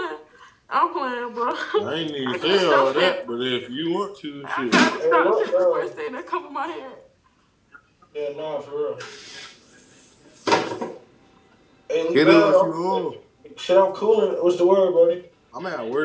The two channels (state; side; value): identical; both; correlation 1.00